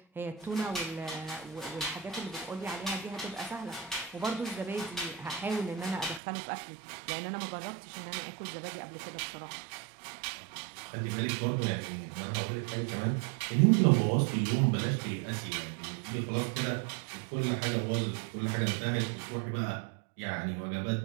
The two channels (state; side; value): drops out; left; at 6.2 s